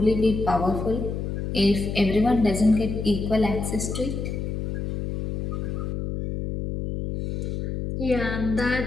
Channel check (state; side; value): noise; left; hum, 3 dB below the sound